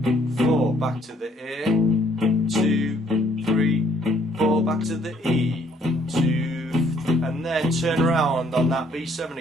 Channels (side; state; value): both; normal; correlation 0.65